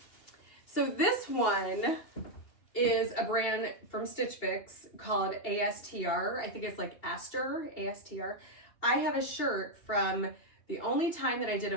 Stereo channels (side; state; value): right; late; 2.8 ms